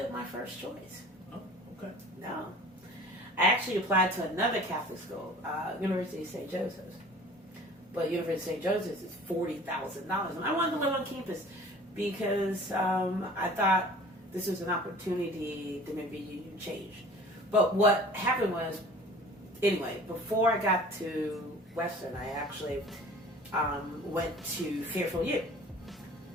my first choice. Oh, okay. No. I actually applied to another Catholic school, University of St. Joseph's. But University of St. Joseph's is $40,000. And I wanted to live on campus because I thought this was an opportunity to maybe you change. But what happened was, anyway, before I got to Western, I actually went to Fairfield U.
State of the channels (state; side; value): normal; both; correlation 0.45